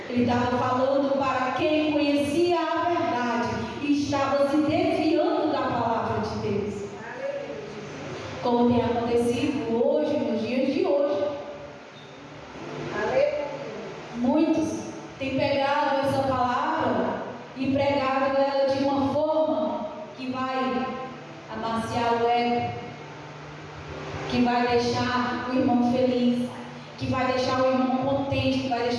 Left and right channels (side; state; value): both; identical; correlation 1.00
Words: Ele estava falando para quem conhecia a verdade e estava se desviando da palavra de Deus. Como tem acontecido hoje, nos dias de hoje. Muitos têm pegado essa palavra e pregado ela de uma forma que vai amaciar o ego, que vai deixar o irmão feliz, que vai deixar o irmão contente, que vai